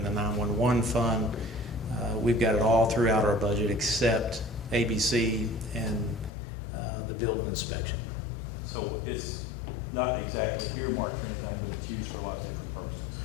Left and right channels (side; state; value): right; drops out; at 6.3 s